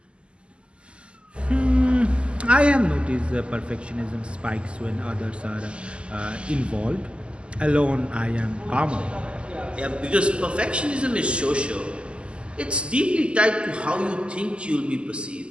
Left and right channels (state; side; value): late; left; 0.053 ms